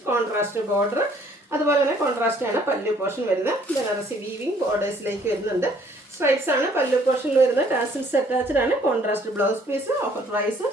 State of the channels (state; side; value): normal; both; correlation 0.61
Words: contrast border, അതുപോലെ തന്നെ കോൺട്രാസ്റ്റ് ആണ് പല്ലു പോർഷൻ വരുന്നത്. ബനാറസി വീവിങ് ബോർഡേഴ്സിലേക്ക് വരുന്നുണ്ട്. സ്ട്രൈപ്സ് ആണ് പല്ലു പോർഷനിൽ വരുന്നത്. ടാസിൽസ് അറ്റാച്ച്ഡ് ആണ്. Contrast blouse piece. Offer price